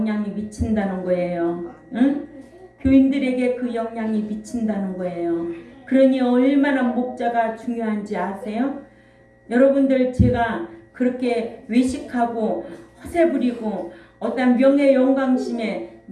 미친다는 거예요. 응? 교인들에게 그 영향이 미친다는 거예요. 그러니 얼마나 목자가 중요한지 아세요? 여러분들, 제가 그렇게 외식하고 허세 부리고 어떤 명예 영광심에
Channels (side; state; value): both; identical; correlation 1.00